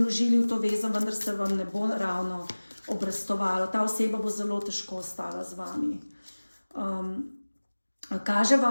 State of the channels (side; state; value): both; inverted; correlation -1.00